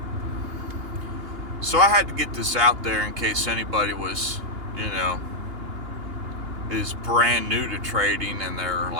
So I had to get this out there in case anybody was, you know, is brand new to trading, and they're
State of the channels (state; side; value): late; left; 2.8 ms